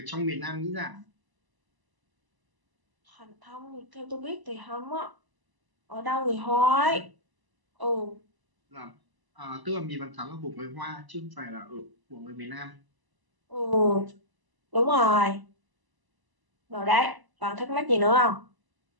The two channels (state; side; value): late; left; 1.0 ms